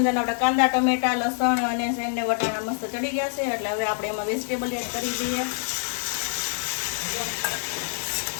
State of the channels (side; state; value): right; silent; 57 dB below the other